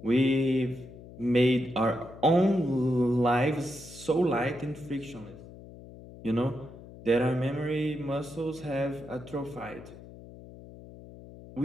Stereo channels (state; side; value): noise; left; hum, 17 dB below the sound